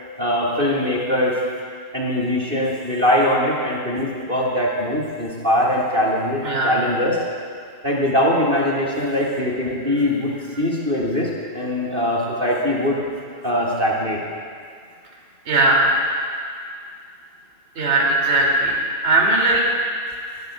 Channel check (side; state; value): left; late; 2.6 ms